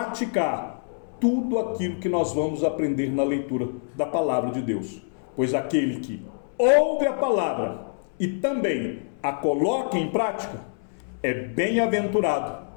tudo aquilo que nós vamos aprender na leitura da palavra de Deus. Pois aquele que ouve a palavra e também a coloca em prática é bem-aventurado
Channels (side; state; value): right; silent; 61 dB below the other